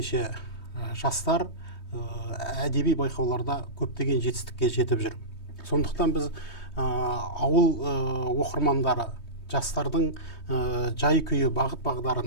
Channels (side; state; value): right; late; 3.2 ms